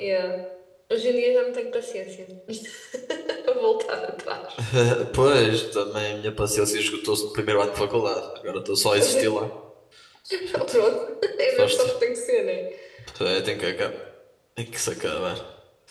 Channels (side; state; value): both; identical; correlation 1.00